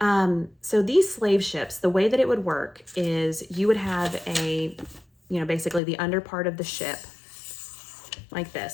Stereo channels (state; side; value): drops out; right; at 5.8 s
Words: So these slave ships, the way that it would work is you would have basically the under part of the ship like